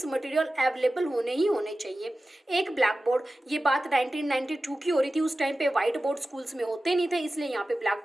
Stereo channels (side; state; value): both; normal; correlation 0.95